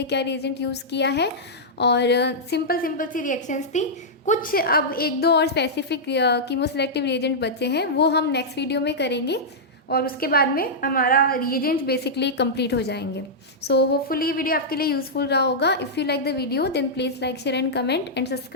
क्या रिएजेंट यूज़ किया है, और सिंपल सी रिएक्शंस थी। कुछ अब एक दो और स्पेसिफिक कीमोसेलेक्टिव रिएजेंट बचे हैं, वो हम नेक्स्ट वीडियो में करेंगे, और उसके बाद में हमारा रिएजेंट बेसिकली कंप्लीट हो जाएंगे। सो होपफुली ये वीडियो आपके लिए यूज़फुल रहा होगा। If you like the video then please like, share and comment and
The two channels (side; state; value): both; normal; correlation -0.10